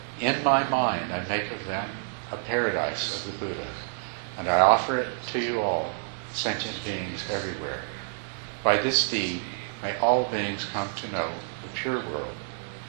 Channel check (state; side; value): silent; left; digital silence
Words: In my mind I make of them a paradise of the Buddha, and I offer it to you all, sentient beings everywhere. By this deed, may all beings come to know the pure world,